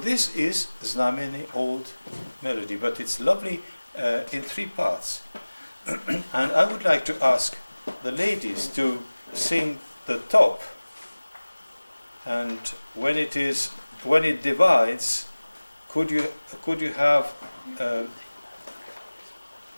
is Znameni old melody, but it's lovely in 3 parts. And I would like to ask the ladies to sing the top, and when it divides, could you have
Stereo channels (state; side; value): inverted; both; correlation -1.00